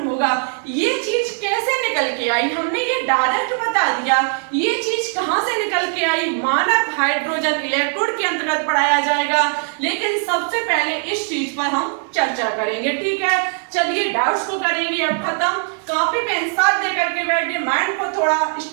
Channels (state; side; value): silent; left; 55 dB below the other